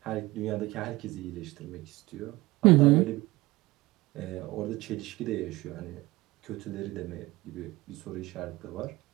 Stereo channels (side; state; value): left; quieter; 20.0 dB